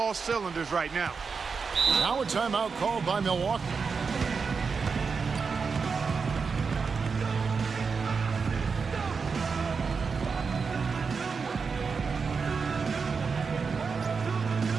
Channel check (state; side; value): quieter; left; 5.2 dB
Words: cylinders right now. Now a timeout called by Milwaukee.